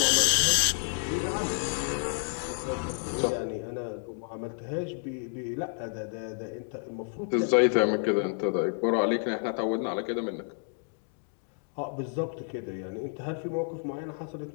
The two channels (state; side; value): silent; right; 58 dB below the other